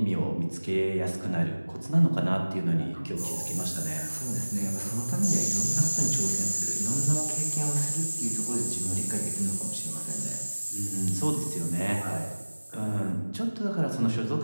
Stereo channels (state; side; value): inverted; both; correlation -1.00